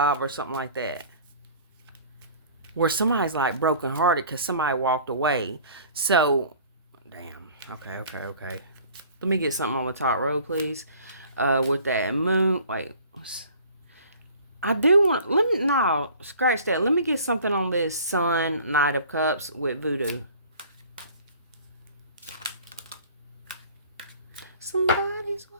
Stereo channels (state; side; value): inverted; both; correlation -0.48